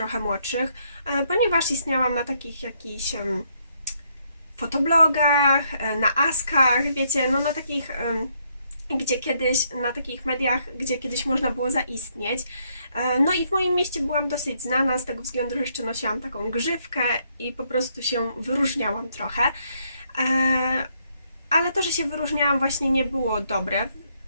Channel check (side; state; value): both; inverted; correlation -0.73